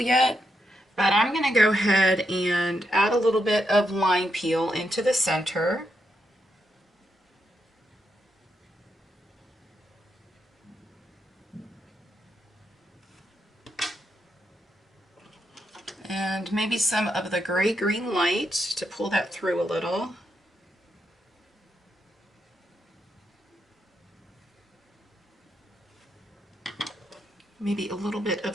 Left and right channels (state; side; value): normal; both; correlation 0.82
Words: but I'm going to go ahead and add a little bit of lime peel into the center. And maybe some of the gray-green light to pull that through a little. Maybe a little bit